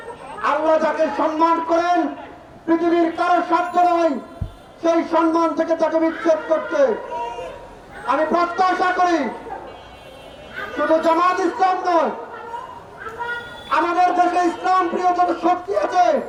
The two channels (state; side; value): identical; both; correlation 1.00